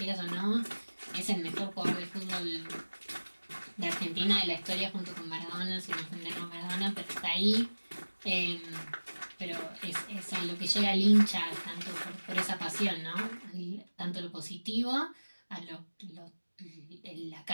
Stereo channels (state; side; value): inverted; both; correlation -1.00